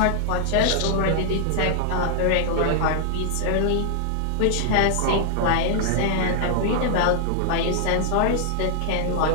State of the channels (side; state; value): both; different; correlation 0.00